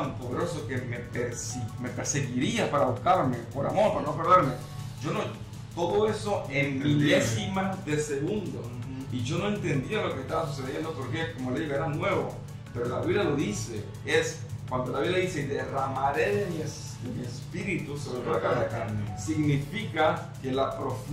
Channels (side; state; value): both; identical; correlation 1.00